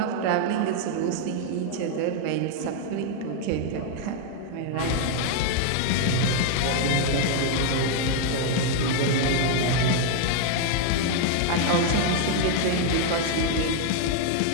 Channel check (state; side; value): different; both; correlation 0.00